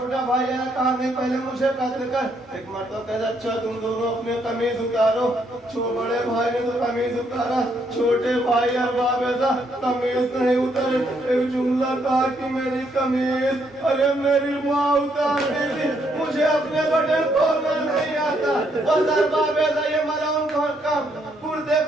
भाई है, कहा नहीं पहले मुझे कत्ल कर। एक मरतबा कहता अच्छा तुम दोनों अपने कमीज उतारो। बड़े भाई ने तो कमीज उतारा, छोटे भाई अरबाबेदा कमीज नहीं उतारे। एक जुमला कहा कि मेरी कमीज, अरे मेरी माँ उतार देगी, मुझे अपने बटन खोलना नहीं आता। बस अरबाबेदा ये मलऊन का कुर्ते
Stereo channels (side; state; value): both; normal; correlation 0.73